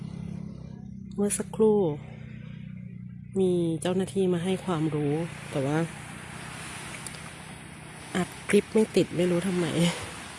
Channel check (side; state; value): both; identical; correlation 1.00